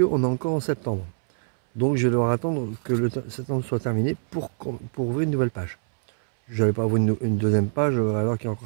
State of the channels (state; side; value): silent; left; 62 dB below the other